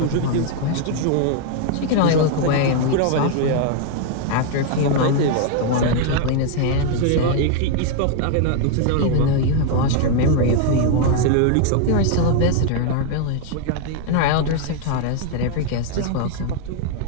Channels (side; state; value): both; different; correlation 0.00